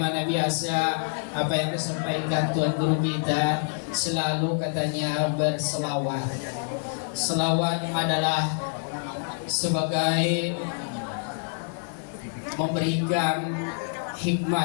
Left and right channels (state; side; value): silent; right; digital silence